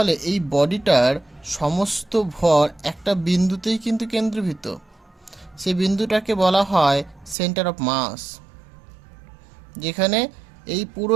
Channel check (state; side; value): drops out; left; at 7.4 s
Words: এই বডিটার সমস্ত ভর একটা বিন্দুতেই কিন্তু কেন্দ্রীভূত। সেই বিন্দুটাকে বলা হয় সেন্টার অফ মাস, যেখানে এই